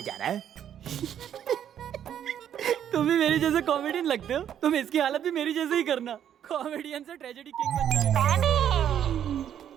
जा रहा है। तुम भी मेरे जैसे कॉमेडियन लगते हो। तुम इसकी हालत भी मेरी जैसे ही करना। कॉमेडियन से ट्रेजेडी किंग बन जाएगा।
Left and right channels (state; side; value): quieter; left; 9.7 dB